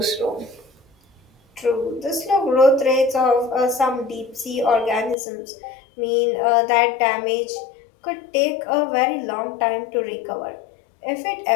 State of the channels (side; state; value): right; drops out; at 5.2 s